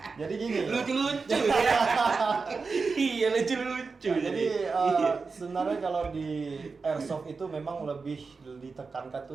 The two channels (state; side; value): quieter; left; 4.5 dB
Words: Jadi gini. Lucu-lucu. Iya, lucu-lucu. Jadi sebenarnya kalau di airsoft itu memang lebih ditekankan